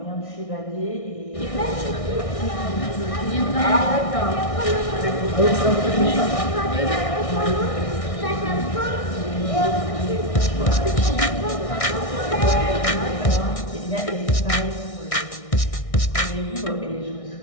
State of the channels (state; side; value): late; right; 1.6 ms